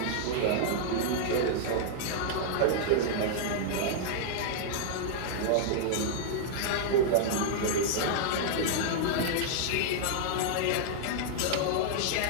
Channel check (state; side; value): different; both; correlation -0.01